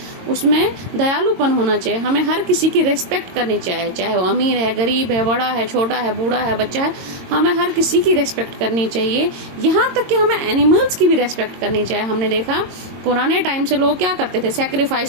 उसमें दयालुपन होना चाहिए, हमें हर किसी की रिस्पेक्ट करनी चाहिए, चाहे वो अमीर है, गरीब है, बड़ा है, छोटा है, बूढ़ा है, बच्चा है, हमें हर किसी की रिस्पेक्ट करनी चाहिए. यहाँ तक कि हमें एनिमल्स की भी रिस्पेक्ट करनी चाहिए. हमने देखा पुराने टाइम से लोग क्या करते थे,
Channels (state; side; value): late; left; 22 ms